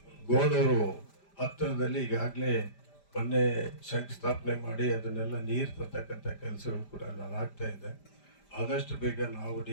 ಗೋಣೂರು ಹತ್ತಿರದಲ್ಲಿ ಈಗಾಗಲೇ ಮೊನ್ನೆ ಶಂಕುಸ್ಥಾಪನೆ ಮಾಡಿ ಅದನ್ನೆಲ್ಲ ನೀರು ತರ್ತಕ್ಕಂಥ ಕೆಲಸಗಳು ಕೂಡ ಆಗ್ತಾ ಇದೆ. ಆದಷ್ಟು ಬೇಗ ನಾವು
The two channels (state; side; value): late; right; 5.0 ms